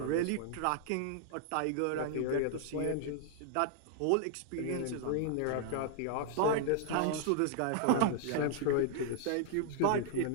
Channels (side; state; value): both; different; correlation 0.00